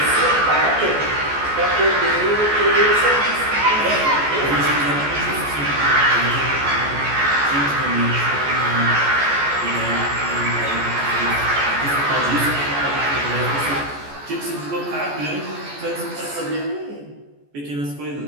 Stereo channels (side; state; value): left; late; 14 ms